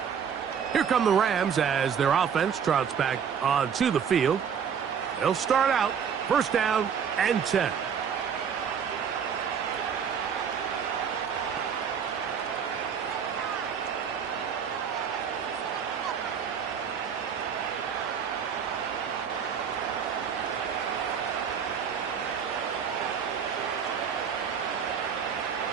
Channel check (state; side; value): quieter; left; 7.3 dB